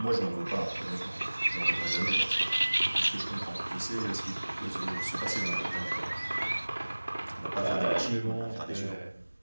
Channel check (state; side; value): inverted; both; correlation -1.00